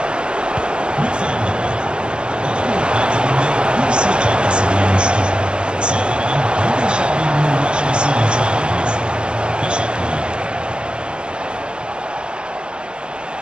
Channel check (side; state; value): left; late; 0.050 ms